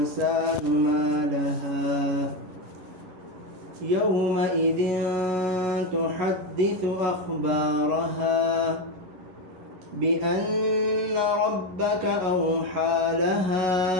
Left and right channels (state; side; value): late; left; 11 ms